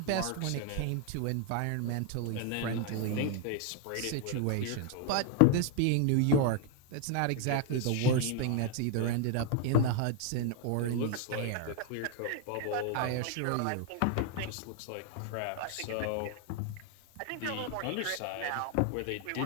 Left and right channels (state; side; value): different; both; correlation 0.00